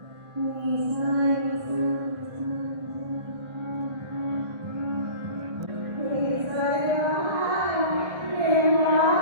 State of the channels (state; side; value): late; left; 1.4 ms